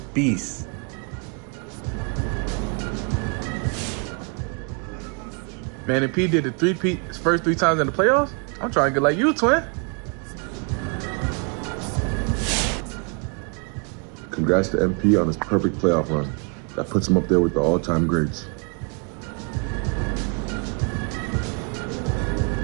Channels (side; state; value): left; quieter; 35.8 dB